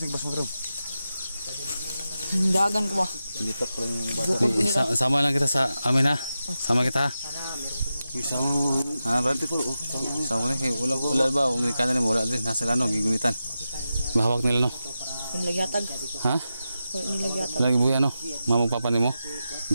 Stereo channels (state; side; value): inverted; both; correlation -0.91